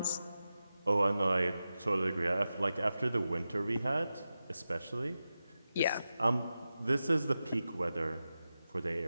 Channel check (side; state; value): both; inverted; correlation -0.92